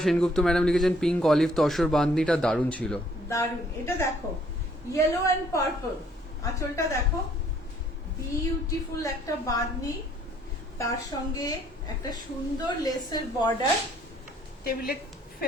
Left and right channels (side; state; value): both; normal; correlation 0.63